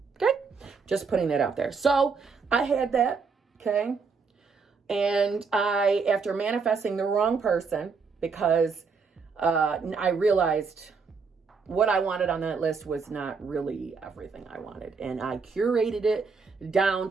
Okay? Just putting that out there. So I had that. Okay? And after manifesting the wrong person, because I realized what I wanted on that list was not really everything I wanted. And I curated it down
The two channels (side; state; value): left; quieter; 5.1 dB